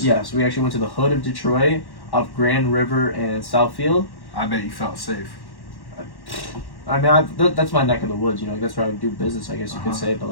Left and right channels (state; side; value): late; right; 1.1 ms